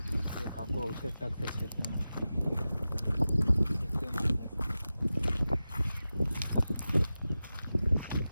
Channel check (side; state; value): both; inverted; correlation -0.94